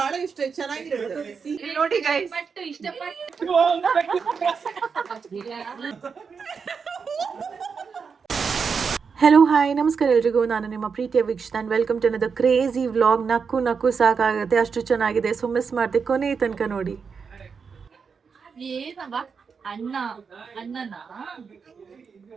ಇಷ್ಟ, ಚೆನ್ನಾಗಿರುತ್ತೆ ನೋಡಿ ಗೈಸ್. ಹಲೋ ಹಾಯ್ ನಮಸ್ಕಾರ ಎಲ್ರಿಗೂ, ನಾನು ನಿಮ್ಮ ಪ್ರೀತಿಯ Veekshita and welcome to another crazy vlog. ನಕ್ಕು ಸಾಕಾಗುತ್ತೆ, ಅಷ್ಟು ಚೆನ್ನಾಗಿದೆ. ಸೊ ಮಿಸ್ ಮಾಡಿದೆ, ಕೊನೆ ತನಕ ನೋಡಿ.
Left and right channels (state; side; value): quieter; left; 5.7 dB